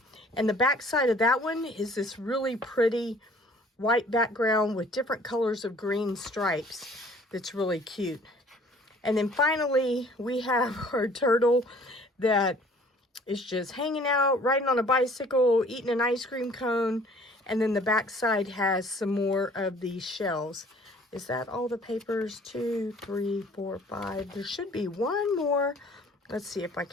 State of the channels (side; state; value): both; normal; correlation 0.54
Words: And the back side of that one is this really pretty white background with different colors of green stripes. That's really cute. And then finally, we have our turtle that is just hanging out, riding on a bicycle, eating an ice cream cone. And then the back side has some more of these shells. Is that all the papers? 2, 3, 4, 5. There should be one more. Let's see if I